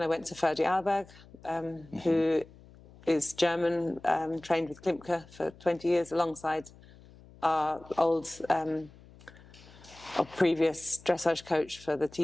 I went to Ferdi Alberg, who is German, trained with Klimke for 20 years alongside our previous dressage coach for the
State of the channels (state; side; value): noise; left; hum, 23 dB below the sound